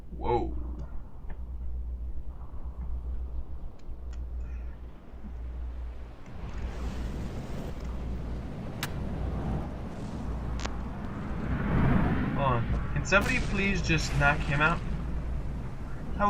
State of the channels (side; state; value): both; identical; correlation 1.00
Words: Whoa. Hold on. Can somebody please just knock him out? I